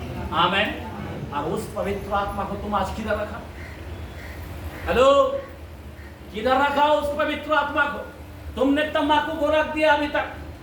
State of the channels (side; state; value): both; identical; correlation 1.00